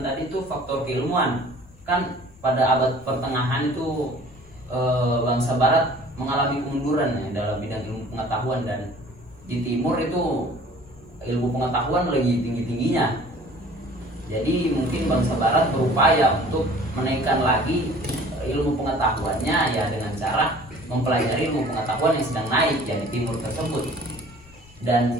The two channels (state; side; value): noise; left; rumble, 25 dB below the sound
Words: tadi itu faktor keilmuan. Kan pada abad pertengahan itu bangsa barat mengalami kemunduran ya, dalam bidang ilmu pengetahuan, dan di timur itu ilmu pengetahuan lagi tinggi-tingginya. Jadi mungkin bangsa barat berupaya untuk menaikkan lagi ilmu pengetahuannya ya dengan cara mempelajari ilmu pengetahuan yang sedang naik ya di timur tersebut.